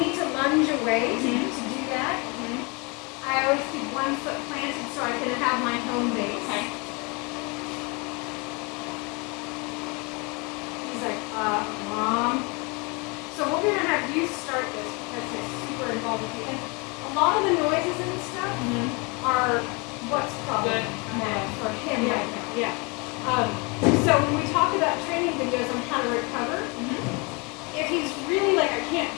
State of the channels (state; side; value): quieter; right; 29.8 dB